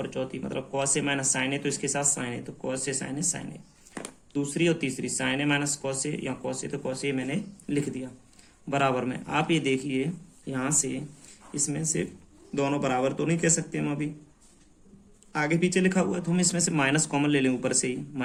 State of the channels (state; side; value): identical; both; correlation 1.00